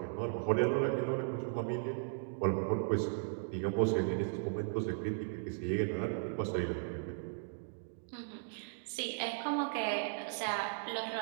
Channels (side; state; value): left; silent; digital silence